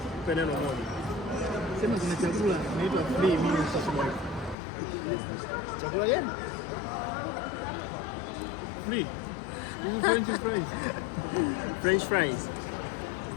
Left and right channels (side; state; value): right; drops out; at 4.5 s